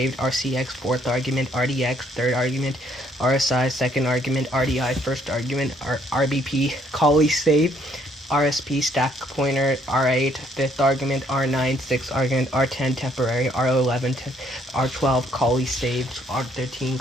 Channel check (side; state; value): both; normal; correlation 0.67